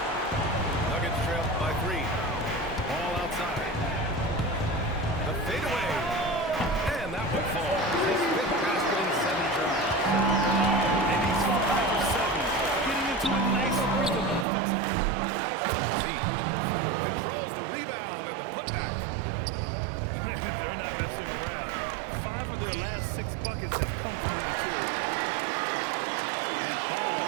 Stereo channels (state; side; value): drops out; left; at 14.5 s